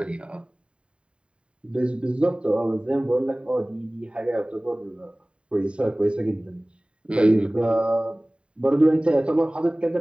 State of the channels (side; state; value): left; late; 0.055 ms